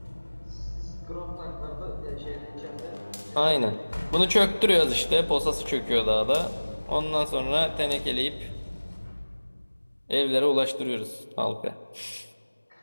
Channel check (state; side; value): inverted; both; correlation -1.00